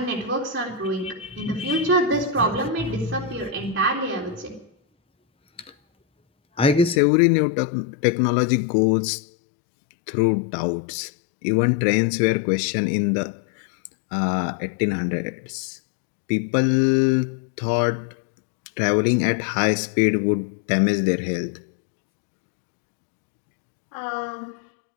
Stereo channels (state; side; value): drops out; right; at 7.0 s